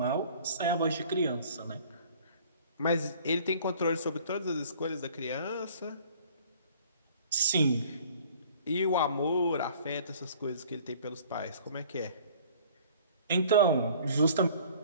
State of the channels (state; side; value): inverted; both; correlation -0.52